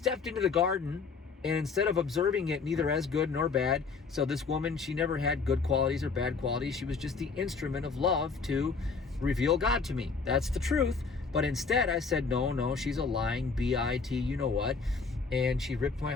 into the garden, and instead of observing it neither as good nor bad, so this woman, she never had good qualities or bad qualities. She was just the instrument of love to reveal God to me. That's the truth. But instead I said, no, she's a lying BIT, you know what? And she ripped my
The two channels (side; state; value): right; quieter; 4.8 dB